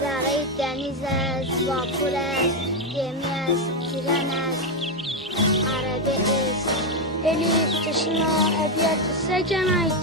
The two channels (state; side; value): normal; both; correlation 0.06